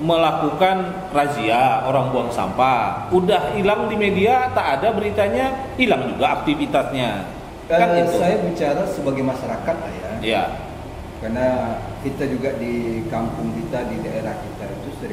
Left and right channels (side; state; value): both; identical; correlation 1.00